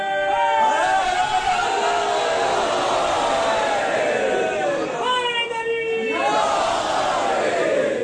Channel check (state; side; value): identical; both; correlation 1.00